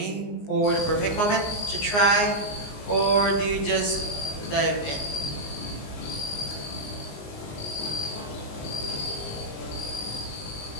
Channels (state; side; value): late; right; 19 ms